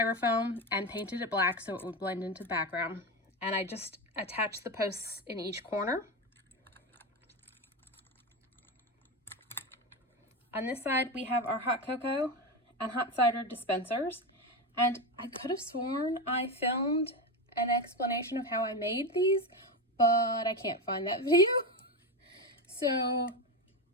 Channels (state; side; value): normal; both; correlation 0.16